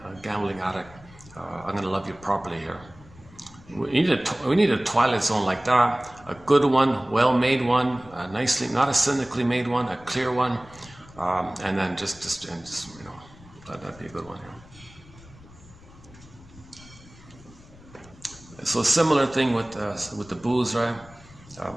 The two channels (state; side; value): noise; left; rumble, 22 dB below the sound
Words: gambling addict. I'm going to love you properly here. We need a Twilight Zone like that, a good one, well-made one, nicely, not a cynically made one, a clear one, and then just you know, that'd be a good one. Yeah. So similar thing with the booze, right?